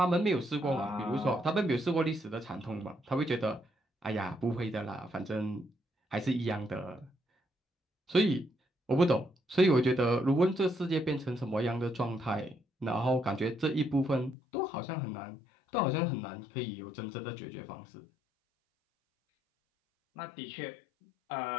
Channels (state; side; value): drops out; right; at 14.4 s